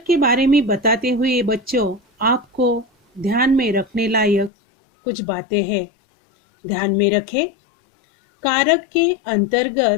के बारे में बताते हुए बच्चों, आपको ध्यान में रखने लायक कुछ बातें हैं। ध्यान में रखें। कारक के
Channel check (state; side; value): drops out; right; at 4.5 s